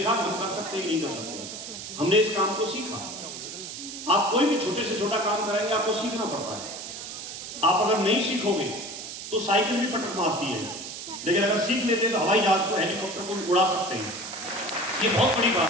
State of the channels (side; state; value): right; noise; hiss, 9 dB below the sound